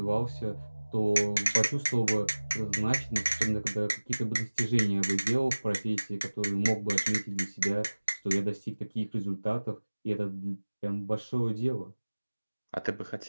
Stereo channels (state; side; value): inverted; both; correlation -1.00